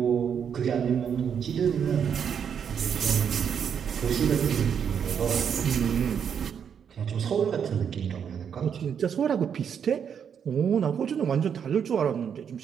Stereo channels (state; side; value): quieter; left; 7.7 dB